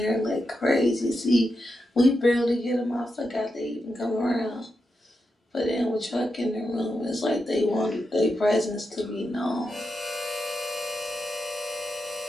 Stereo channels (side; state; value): both; normal; correlation 0.87